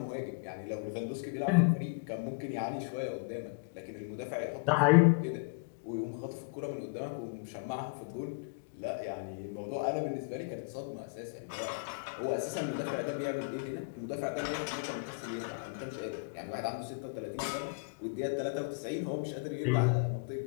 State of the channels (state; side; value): quieter; right; 34.1 dB